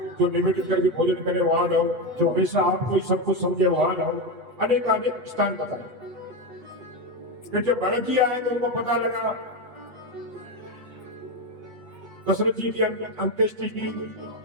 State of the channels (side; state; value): left; late; 8.1 ms